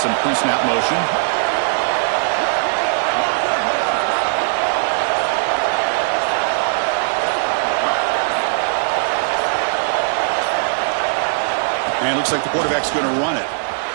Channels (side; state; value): left; silent; 63 dB below the other